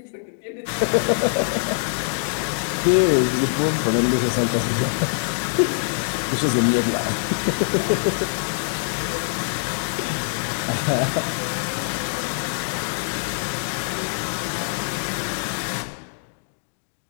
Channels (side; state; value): right; silent; digital silence